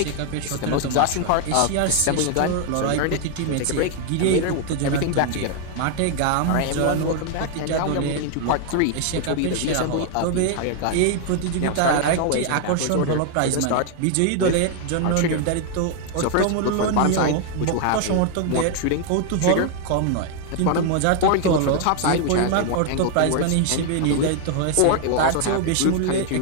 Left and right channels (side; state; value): both; different; correlation 0.00